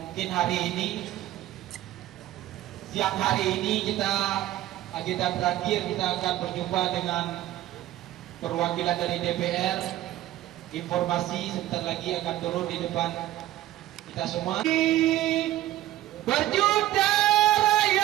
mungkin hari ini, siang hari ini agenda terakhir kita akan berjumpa dengan perwakilan dari DPR. Informasi sebentar lagi akan turun di depan kita semua. Berjuta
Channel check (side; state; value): left; quieter; 14.5 dB